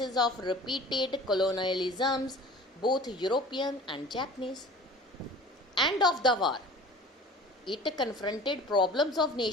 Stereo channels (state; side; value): normal; both; correlation 0.43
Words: of repeated colonialisms, both European and Japanese. End of the war, it confronted problems of